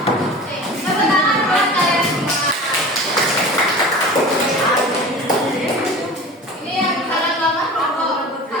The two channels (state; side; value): normal; both; correlation 0.36